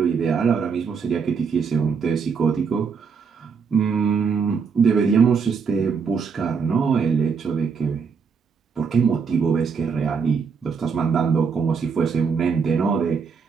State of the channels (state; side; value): quieter; left; 5.7 dB